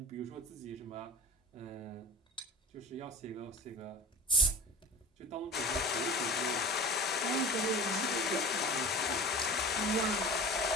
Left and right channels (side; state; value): both; normal; correlation 0.33